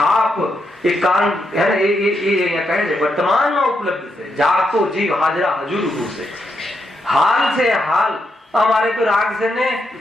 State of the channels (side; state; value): both; normal; correlation 0.81